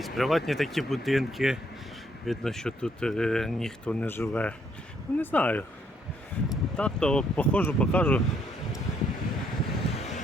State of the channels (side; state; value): both; normal; correlation 0.70